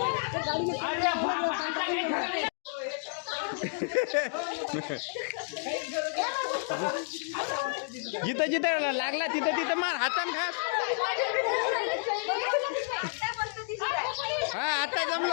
जिथं जिथं लागला तिथं तिथं मार हातान घास हा आता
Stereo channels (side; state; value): right; silent; digital silence